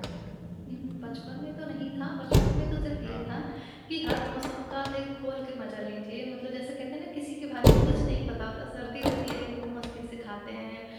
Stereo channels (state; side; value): identical; both; correlation 1.00